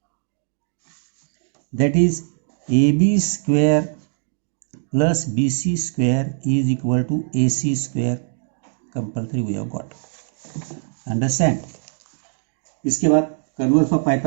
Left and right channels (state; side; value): silent; left; 64 dB below the other